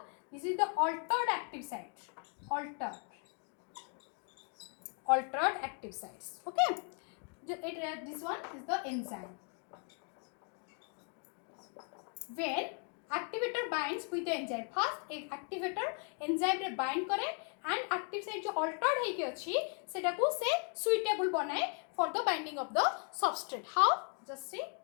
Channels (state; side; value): quieter; right; 39.9 dB